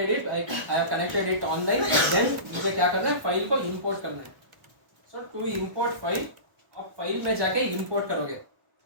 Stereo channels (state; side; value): late; left; 1.1 ms